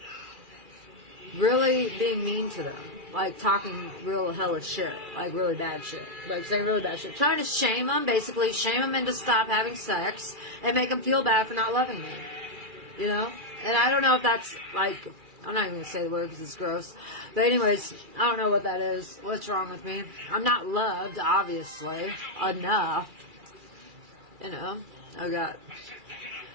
really being mean to them. Like, talking real hellish shit. Like, really bad shit. Like, saying really bad shit. Trying to shame them, basically. Shame them into stop having sex. And make them feel bad for not loving me. You know? And I don't know if that's, like... I'm not even going to say the word because it's gross. But anyways, I don't know what that is. What's wrong with me? I'm not loved, obviously. Enough. You know? I got...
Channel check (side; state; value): left; late; 2.4 ms